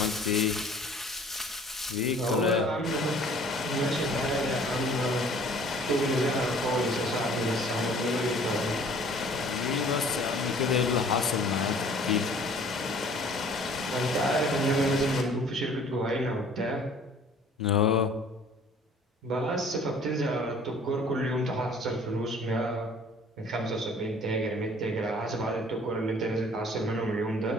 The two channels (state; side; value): normal; both; correlation 0.52